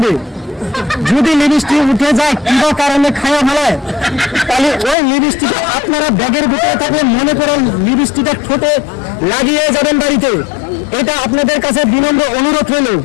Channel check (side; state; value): right; drops out; at 5.0 s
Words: যদি লিপস্টিক উঠে যায় কিবা কারণে খাওয়া ভালো, তাহলে ওই লিপস্টিক আপনারা ব্যাগের ভিতরে থাকলে মনে করেন লিপস্টিকটা ঠোঁটে লাগিয়ে যাবেন বাড়িতে। এটা আপনাদের কাছে বিনম্র অনুরোধ রইল।